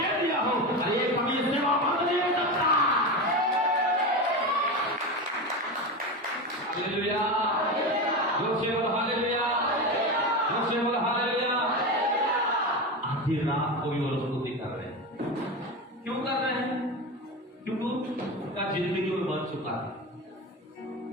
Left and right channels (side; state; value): both; normal; correlation 0.21